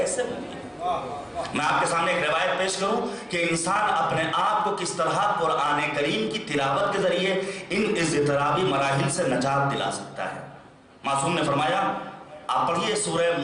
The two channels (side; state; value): both; identical; correlation 1.00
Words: ممکن ہے؟ میں آپ کے سامنے ایک روایت پیش کروں کہ انسان اپنے آپ کو کس طرح قرآن کریم کی تلاوت کے ذریعے ان اضطرابی مراحل سے نجات دلا سکتا ہے. معصوم نے فرمایا، آپ پڑھیے سورہ